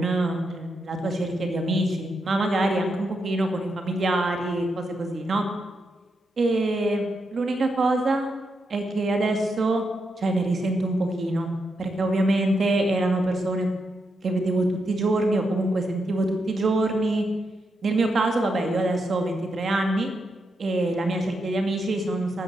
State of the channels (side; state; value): both; normal; correlation 0.83